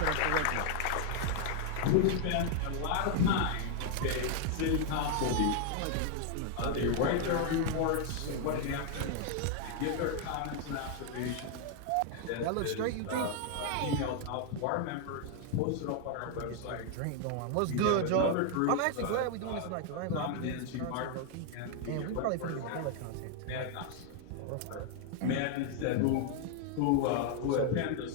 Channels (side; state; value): both; different; correlation 0.00